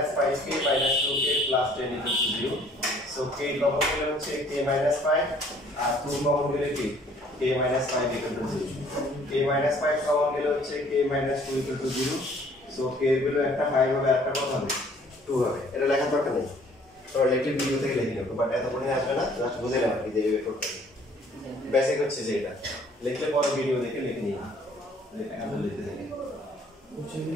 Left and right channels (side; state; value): both; normal; correlation 0.58